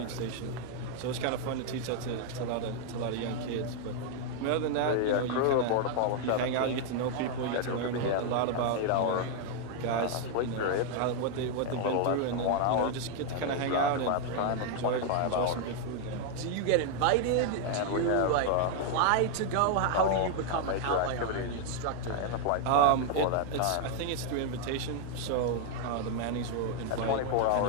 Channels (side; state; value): both; different; correlation 0.00